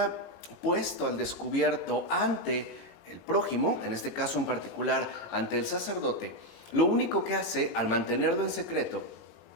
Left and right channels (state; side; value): late; right; 22 ms